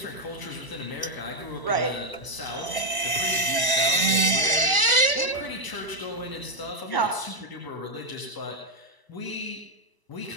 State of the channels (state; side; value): late; right; 1.0 ms